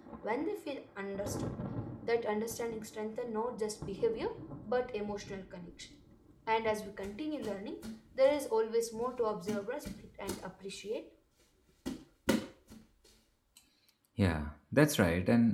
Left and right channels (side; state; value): both; identical; correlation 1.00